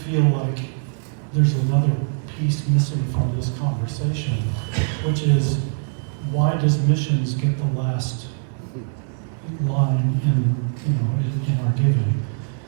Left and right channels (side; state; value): left; silent; 64 dB below the other